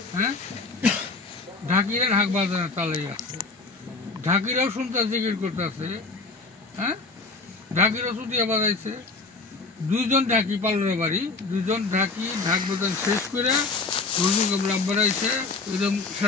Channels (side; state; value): right; quieter; 3.9 dB